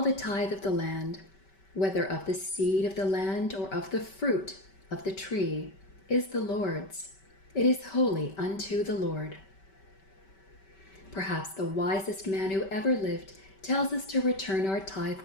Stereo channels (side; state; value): right; late; 5.2 ms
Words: tithe of the land, whether of the seed of the land or of the fruit of the tree, is the Lord's. It is holy unto the Lord." Perhaps the wisest man who ever lived tells us to return our tithe